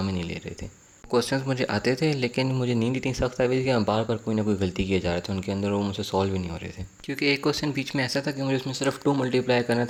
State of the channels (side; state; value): both; identical; correlation 1.00